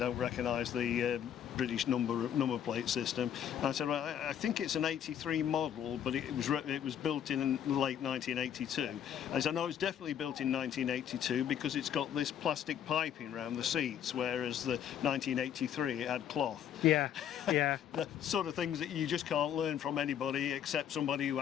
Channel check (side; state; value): right; quieter; 9.5 dB